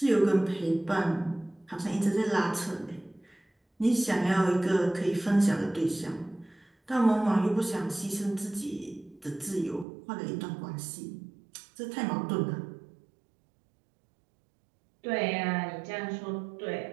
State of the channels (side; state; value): left; drops out; at 9.9 s